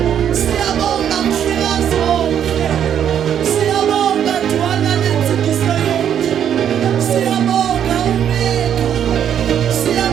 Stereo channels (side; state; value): left; quieter; 9.3 dB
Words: siyabonga mhlekazi wonke siyabonga dwana lenzikiso yethu siyabonga umeka